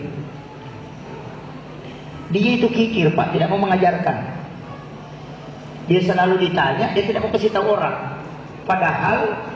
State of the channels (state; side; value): identical; both; correlation 1.00